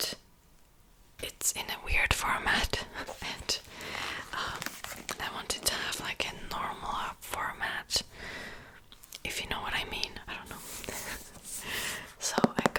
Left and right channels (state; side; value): identical; both; correlation 1.00